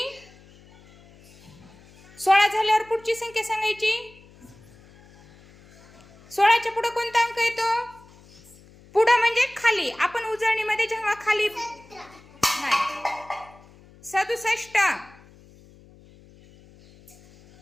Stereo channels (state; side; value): noise; left; hum, 25 dB below the sound